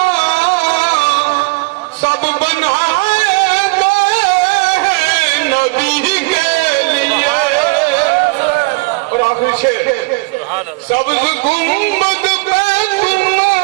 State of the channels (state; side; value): quieter; left; 27.9 dB